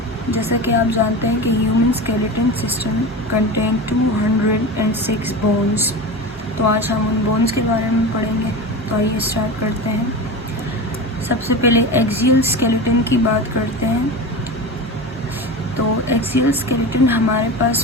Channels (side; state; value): both; normal; correlation 0.27